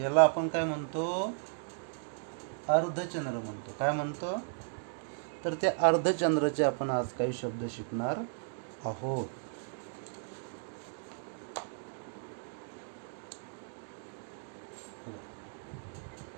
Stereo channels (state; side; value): silent; left; digital silence